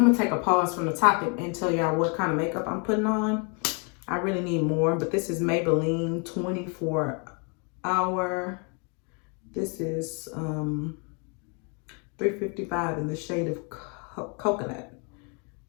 to take a pause from the topic and tell y'all what kind of makeup I'm putting on. I really need more, but this is Maybelline 24 Hour. This is 355 in the shade of coconut.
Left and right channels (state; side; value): quieter; right; 36.0 dB